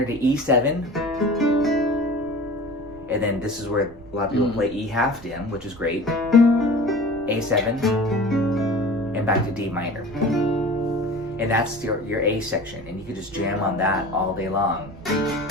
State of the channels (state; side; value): noise; right; rumble, 20 dB below the sound